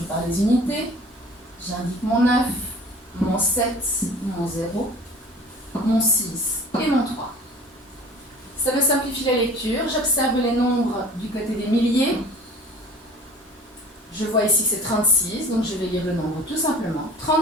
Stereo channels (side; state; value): both; normal; correlation 0.44